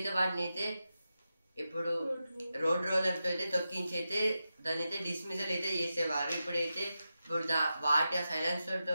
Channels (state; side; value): inverted; both; correlation -0.90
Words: వాటిని అయితే ఇప్పుడు రోడ్ రోలర్తో అయితే తొక్కించి అయితే దాన్ని అయితే డిస్మిసల్ అయితే చేసేవారు. ఇప్పుడైతే వాటి ఆ సైలెన్సర్తో